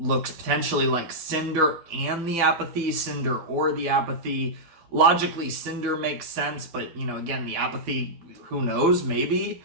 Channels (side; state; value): left; late; 12 ms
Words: potentially like Cinder and the Apathy, Cinder or the Apathy. Logically, Cinder makes sense, but, again, the Apathy, who knows, maybe.